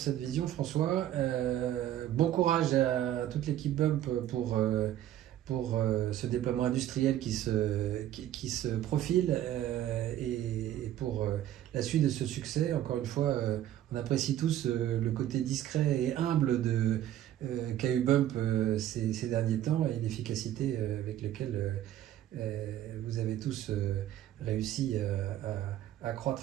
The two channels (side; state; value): left; quieter; 12.3 dB